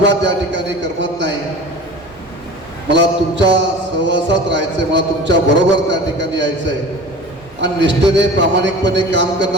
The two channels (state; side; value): normal; both; correlation 0.38